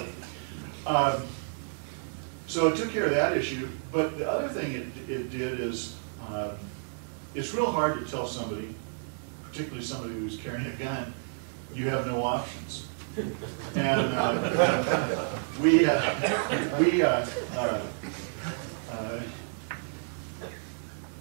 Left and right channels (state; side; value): silent; left; digital silence